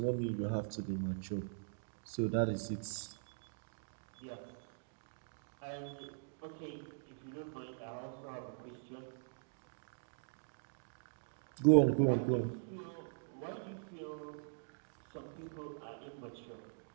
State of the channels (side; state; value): left; silent; digital silence